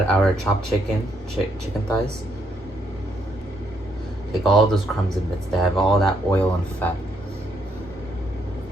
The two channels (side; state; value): both; normal; correlation 0.74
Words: our chopped chicken thighs. Take all those crumbs and bits. They have all that oil and fat.